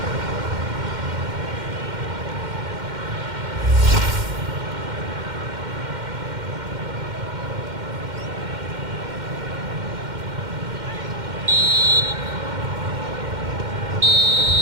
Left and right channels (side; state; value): left; late; 2.1 ms